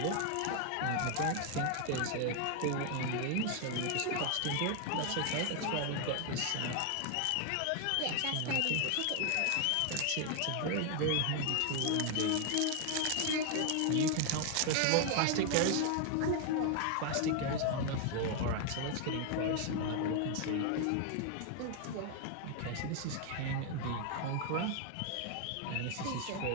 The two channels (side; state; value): both; different; correlation 0.01